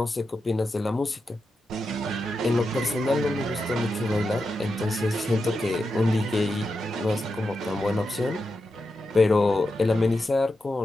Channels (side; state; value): both; normal; correlation 0.88